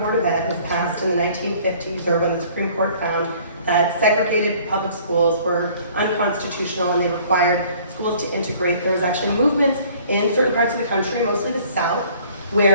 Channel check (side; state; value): both; inverted; correlation -0.54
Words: of Ed was passed in the 1950s, or when the Supreme Court found that segregated public schools were unconstitutional and they required schools to integrate. There was actually movements in certain parts of the country, mostly the South,